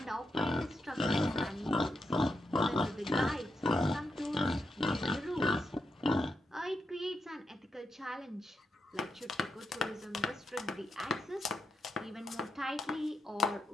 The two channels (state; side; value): normal; both; correlation 0.83